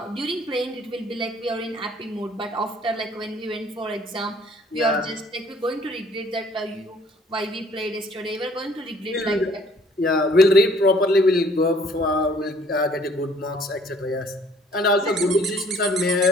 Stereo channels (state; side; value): normal; both; correlation 0.58